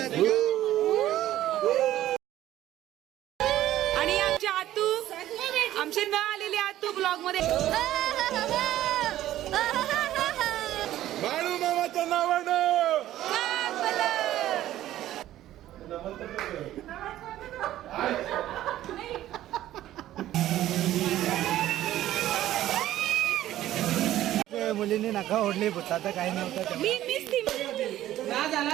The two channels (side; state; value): left; quieter; 13.6 dB